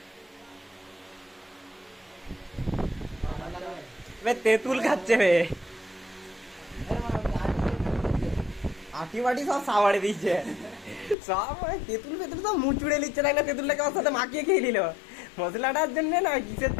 তেঁতুল খাচ্ছে বে, আটি বাটি সব সাবাড়ে দিচ্ছে সব। তেঁতুল ফেতুল সব মুচুড়ে নিচ্ছে, তাই না? তেঁতুলটাকে ওর সাথে মাখিয়ে খেয়ে নিল, মশলাটার জন্য না কিসের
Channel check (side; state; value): right; drops out; at 11.2 s